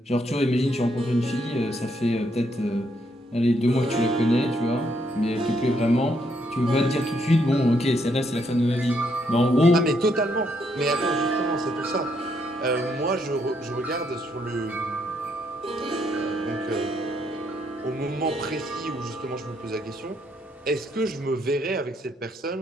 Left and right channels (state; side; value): normal; both; correlation 0.74